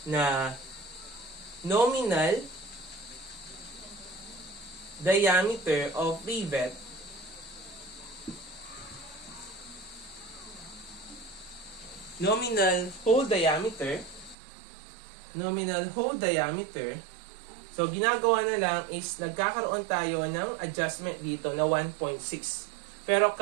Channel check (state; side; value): drops out; left; at 14.4 s